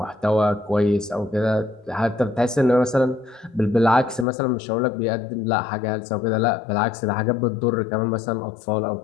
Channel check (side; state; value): right; drops out; at 4.2 s